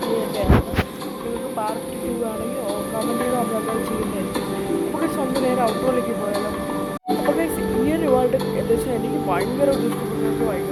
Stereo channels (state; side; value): identical; both; correlation 1.00